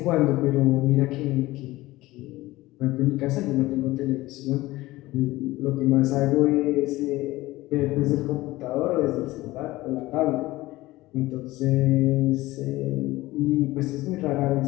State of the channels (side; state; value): right; quieter; 18.4 dB